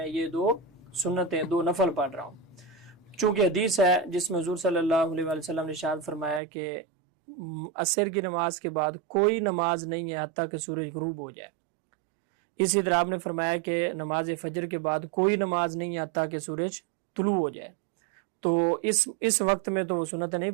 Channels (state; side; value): drops out; left; at 6.4 s